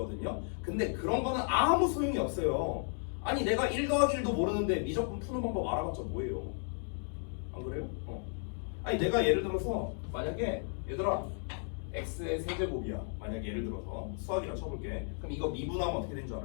근데 그런 거는 아무 소용이 없어요. 아니 내가 1 더하기 1도 모르는데 미적분 푸는 방법 알아봤자 뭐예요? 안 그래요? 아니 내가 예를 들어서 만약에 얘들아 x의 세제곱이야. 만약에 예를 들어서 수학이라 쳐볼게. 그럼 이거 미분하면 어떻게 되는 줄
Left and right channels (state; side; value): silent; right; 55 dB below the other